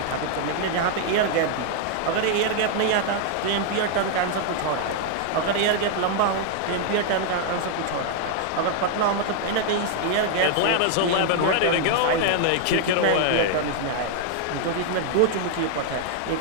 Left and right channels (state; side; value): different; both; correlation 0.00